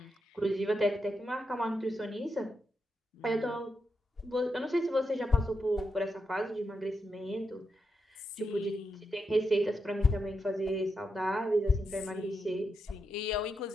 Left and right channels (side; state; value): both; normal; correlation 0.85